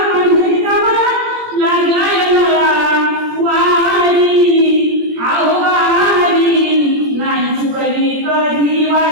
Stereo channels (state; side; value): late; left; 17 ms